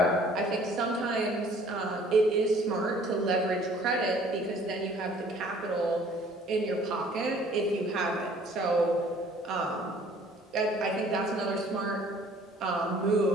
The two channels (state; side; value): normal; both; correlation 0.55